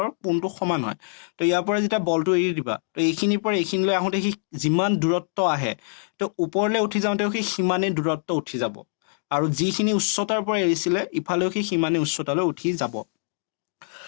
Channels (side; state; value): right; silent; digital silence